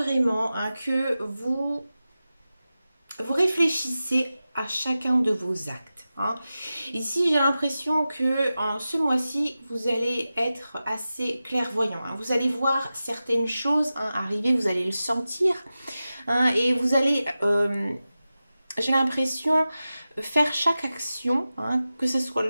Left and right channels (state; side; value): inverted; both; correlation -0.94